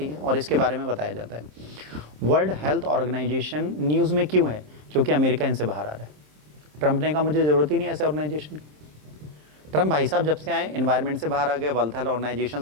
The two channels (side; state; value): left; late; 27 ms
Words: हैं और इसके बारे में बताया जाता है। वर्ल्ड हेल्थ ऑर्गेनाइजेशन न्यूज़ में क्यों है? क्योंकि अमेरिका इनसे बाहर आ रहा है। ट्रंप ने कहा मुझे ज़रूरत ही नहीं ऐसे ऑर्गेनाइजेशन की। ट्रंप भाई साहब जब से आए एनवायरनमेंट से बाहर आ गए, वर्ल्ड हेल्थ